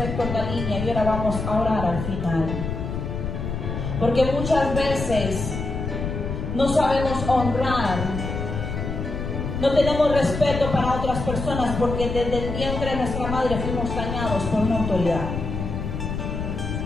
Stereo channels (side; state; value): left; noise; rumble, 4 dB below the sound